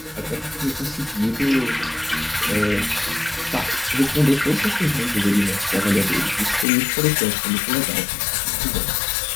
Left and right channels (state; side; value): drops out; right; at 6.7 s